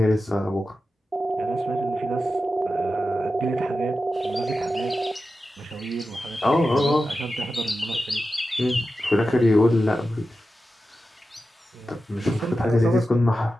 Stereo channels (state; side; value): normal; both; correlation 0.92